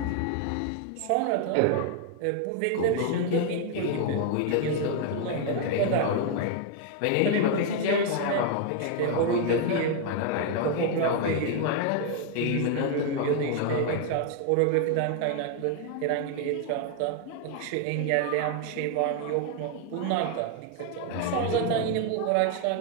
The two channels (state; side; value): different; both; correlation 0.00